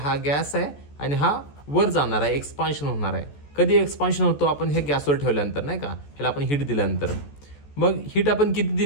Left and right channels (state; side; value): late; right; 14 ms